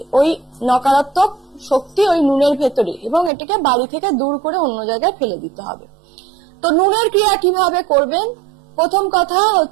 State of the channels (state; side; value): drops out; left; at 3.3 s